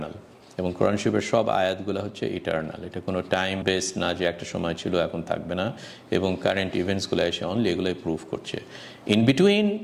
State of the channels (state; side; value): identical; both; correlation 1.00